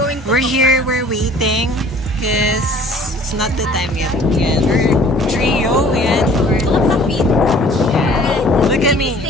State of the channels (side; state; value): both; normal; correlation 0.52